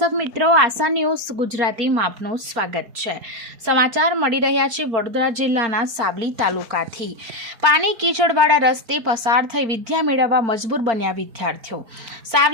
મિત્રો, આશા ન્યૂઝ ગુજરાતીમાં આપનું સ્વાગત છે। સમાચાર મળી રહ્યા છે વડોદરા જિલ્લાના સાવલી તાલુકાથી। પાણી કીચડવાળા રસ્તે પસાર થઈ વિદ્યા મેળવવા મજબૂર બન્યા વિદ્યાર્થીઓ।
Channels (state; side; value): late; left; 4.4 ms